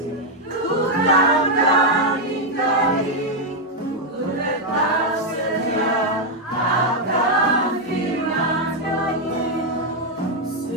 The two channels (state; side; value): normal; both; correlation 0.01